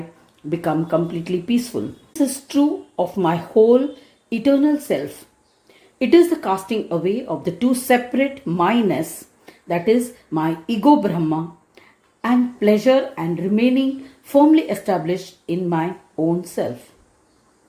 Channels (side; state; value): both; identical; correlation 1.00